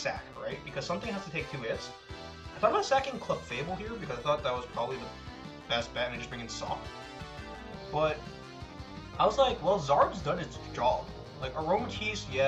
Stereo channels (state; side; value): identical; both; correlation 1.00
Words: right? Because something has to take 2 hits. I thought about sacking Clefable here, because I thought that was probably the best bet, and just bring in Sop. But I was like, well, Zard's done its job. Like, Aromakis,